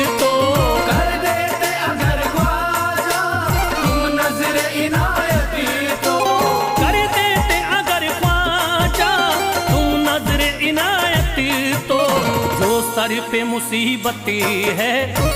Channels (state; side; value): identical; both; correlation 1.00